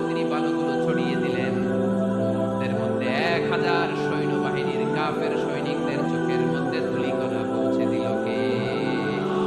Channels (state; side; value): identical; both; correlation 1.00